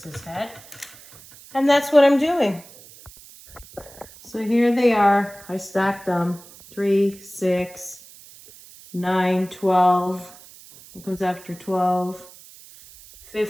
his head. And that's what I'm doing. So here they are. I stacked them. 3, 6, 9, 12. What comes after 12?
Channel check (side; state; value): right; noise; hiss, 21 dB below the sound